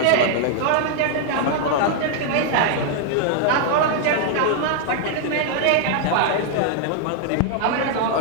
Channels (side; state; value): both; different; correlation 0.00